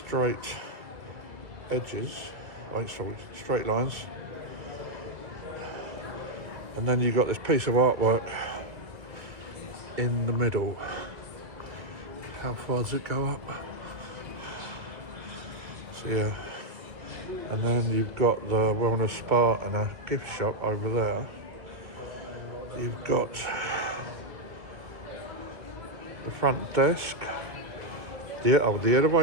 edges, straight lines, and then you've got this piece of artwork in the middle. How far does it go up? So yeah, and then you've got the wellness spa and a gift shop over there. You've got the front desk. The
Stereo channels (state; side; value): late; left; 2.0 ms